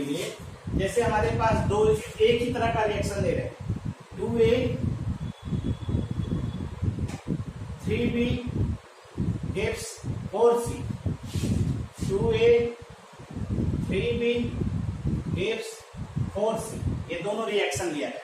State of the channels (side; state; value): both; identical; correlation 1.00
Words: लिए। जैसे हमारे पास दो एक ही तरह का रिएक्शन ले रहे हैं, 2A 3B gives 4C, 2A 3B gives 4C। ये दोनों